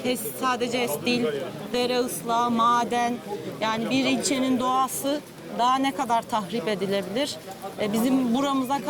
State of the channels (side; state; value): both; identical; correlation 1.00